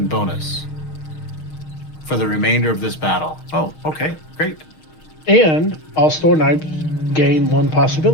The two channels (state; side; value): late; right; 6.4 ms